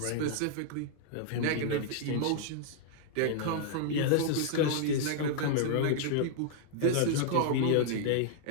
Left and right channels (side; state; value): both; different; correlation -0.01